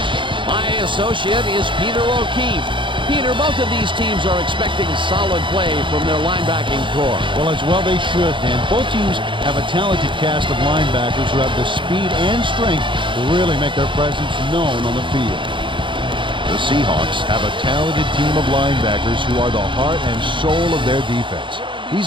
My associate is Peter O'Keefe. Peter, both of these teams are expecting solid play from their linebacking core. Well, as well they should, and both teams have a talented cast of linebackers who have the speed and strength to really make their presence known on the field. The Seahawks have a talented team of linebackers who are the heart and soul of their defense. These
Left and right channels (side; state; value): left; late; 0.24 ms